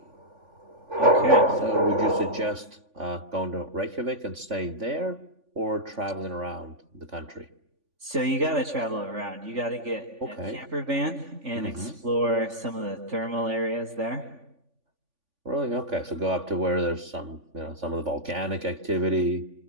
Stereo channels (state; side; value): late; left; 3.5 ms